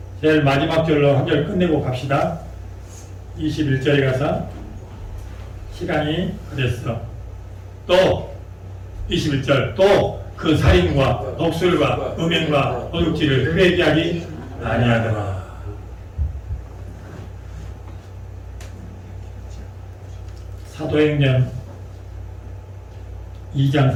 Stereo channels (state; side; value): identical; both; correlation 1.00